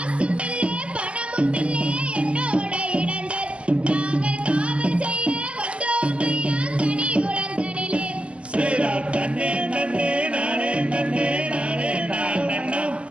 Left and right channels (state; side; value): late; left; 0.057 ms